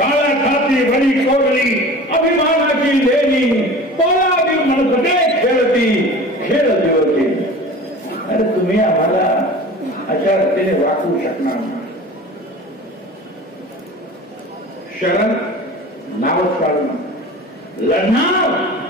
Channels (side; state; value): both; normal; correlation 0.38